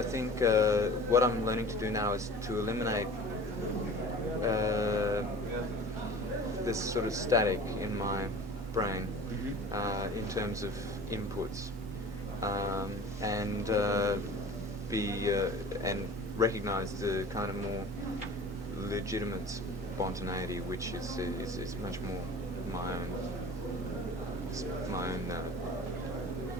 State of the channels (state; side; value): normal; both; correlation 0.41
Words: think what I'm learning to do now is to eliminate this sort of static in my brain in terms of inputs, and and recognize the kind of more legitimate spontaneity, which is much more my own